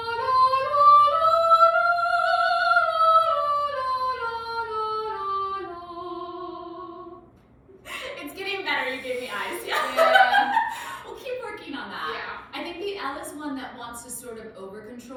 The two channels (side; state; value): both; identical; correlation 1.00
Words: It's getting better. You gave me eyes. Yeah. We'll keep working on that. Yeah. I think the L is one that wants to sort of over